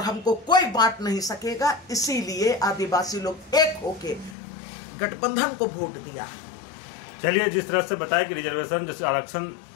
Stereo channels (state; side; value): drops out; right; at 4.4 s